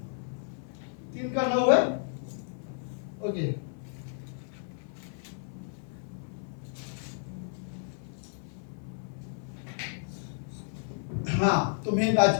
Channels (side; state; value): right; silent; 56 dB below the other